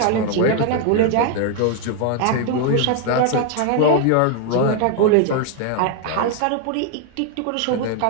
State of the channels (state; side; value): different; both; correlation 0.00